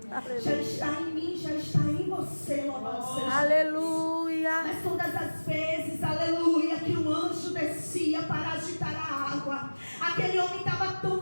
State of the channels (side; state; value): both; inverted; correlation -1.00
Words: Aleluia. Já está em mim, já está em você. Louvado seja. Aleluia. Mas todas as vezes, aleluia, que um anjo descia para agitar a água, aquele homem estava